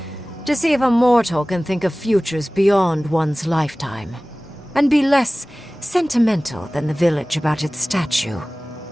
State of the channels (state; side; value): normal; both; correlation 0.98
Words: To see if a mortal can think of futures beyond one's lifetime. And be less sentimental than the village about its statue.